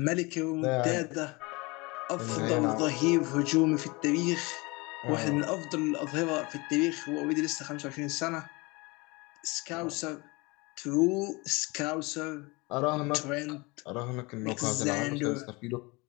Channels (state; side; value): quieter; right; 25.6 dB